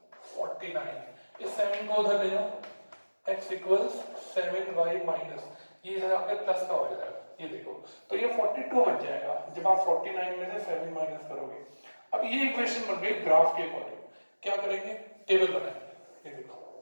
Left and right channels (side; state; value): both; inverted; correlation -1.00